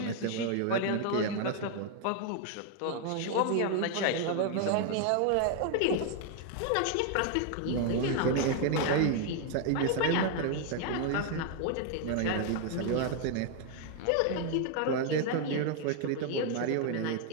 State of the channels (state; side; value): different; both; correlation 0.00